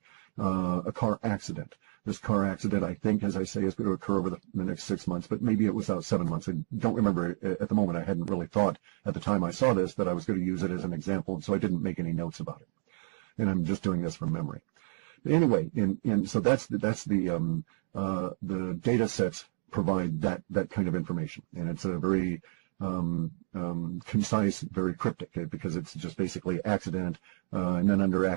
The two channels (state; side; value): silent; left; digital silence